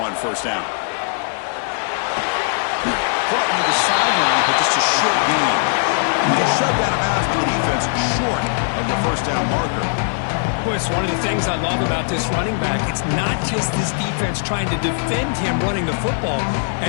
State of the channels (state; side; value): silent; right; digital silence